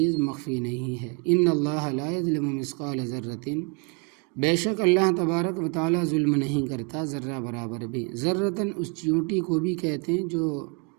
مخفی نہیں ہے۔ ان اللہ لا یظلم مثقال ذرۃ، بے شک اللہ تبارک و تعالیٰ ظلم نہیں کرتا ذرہ برابر بھی۔ ذرۃً اس چیونٹی کو بھی کہتے ہیں جو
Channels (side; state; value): left; quieter; 33.1 dB